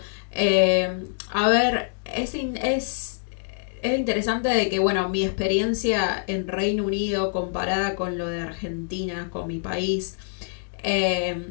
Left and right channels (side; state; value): right; silent; digital silence